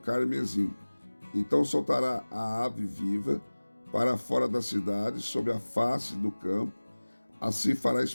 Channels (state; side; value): inverted; both; correlation -1.00